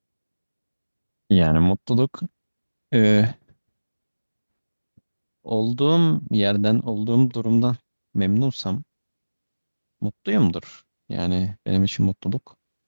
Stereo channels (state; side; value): inverted; both; correlation -1.00